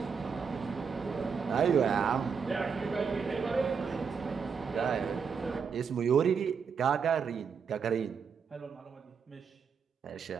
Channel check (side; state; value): left; quieter; 6.2 dB